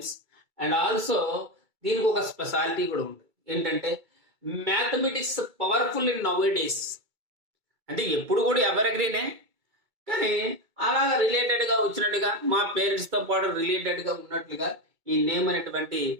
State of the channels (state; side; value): late; left; 2.3 ms